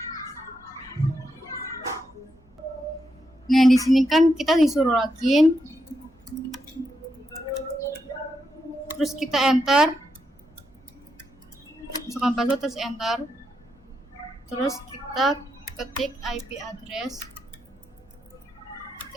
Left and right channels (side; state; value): both; normal; correlation 0.83